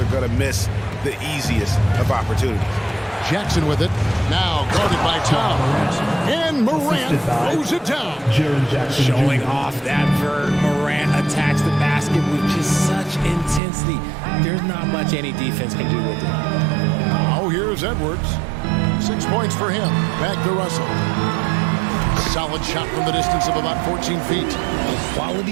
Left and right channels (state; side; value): drops out; left; at 13.6 s